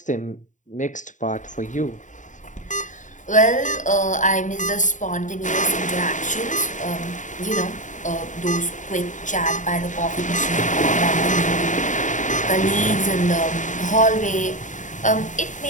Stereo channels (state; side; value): late; right; 0.36 ms